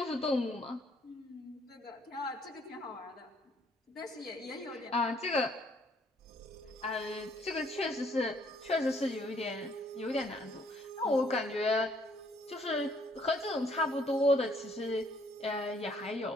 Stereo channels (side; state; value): both; normal; correlation 0.65